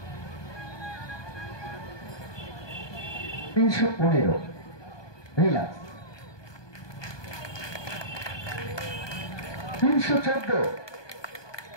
তিনশো 15 রিল্যাক্স। 314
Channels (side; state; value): right; late; 1.2 ms